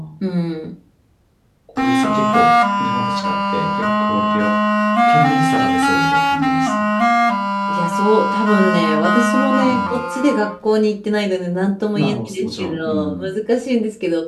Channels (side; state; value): both; identical; correlation 1.00